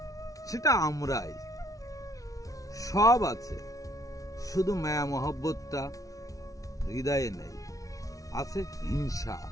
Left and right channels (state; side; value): late; right; 0.17 ms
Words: সেটা আমরাই। সব আছে, শুধু মায়া মহব্বতটা হৃদয়ে নেই, আছে হিংসা।